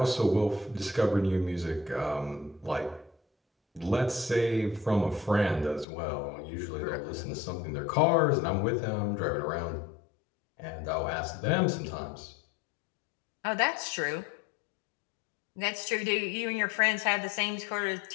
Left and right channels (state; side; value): drops out; right; at 5.9 s